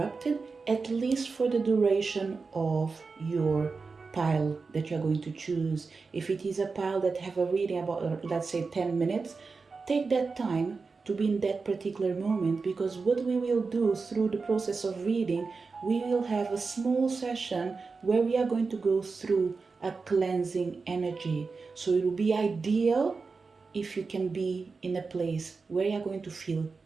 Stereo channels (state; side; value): quieter; left; 4.5 dB